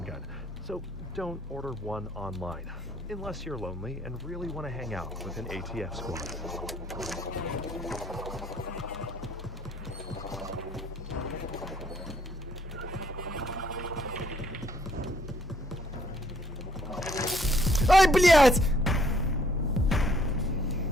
gun, so don't order one online, unless you're lonely and really want to hang out with an ATF squad. Ай, блядь!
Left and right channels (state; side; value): normal; both; correlation 0.64